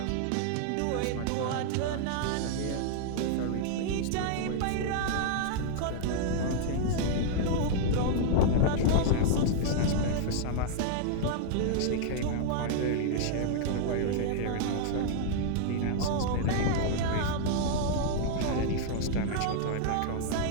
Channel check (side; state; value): both; different; correlation -0.01